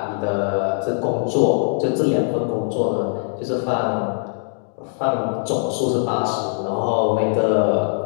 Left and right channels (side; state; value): right; silent; digital silence